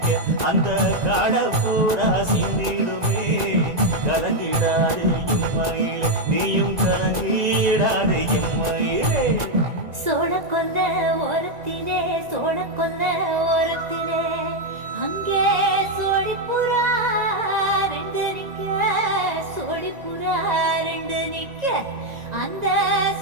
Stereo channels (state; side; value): late; left; 1.9 ms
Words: அந்த காட பூரா சிந்திடுமே. கலங்கிடாதே எம்மையிலே நீயும் கலங்கிடாதே எம்மையிலே. சோழ கொல்ல ஓரத்திலே சோழ கொல்ல ஓரத்திலே அங்கே சோடிப்புறா 2 நிக்க சோடிப்புறா 2 நிக்க அந்த